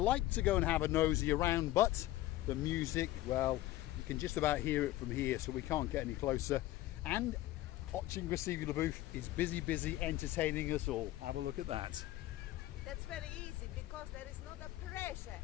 to go and have a nosy around, but the music, well, you can just about hear it from here, so we can't get any closer. And Oching Receiver Booth is busy entertaining us all. Have a look at that. That's very easy because there is not a pressure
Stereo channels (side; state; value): right; quieter; 15.8 dB